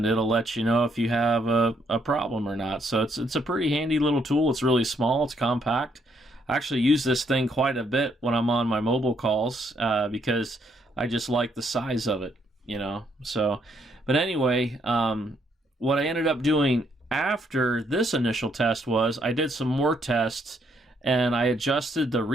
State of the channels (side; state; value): both; normal; correlation 0.72